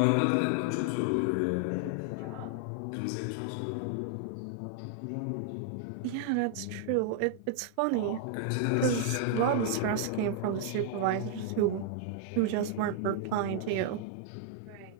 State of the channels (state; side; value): different; both; correlation 0.00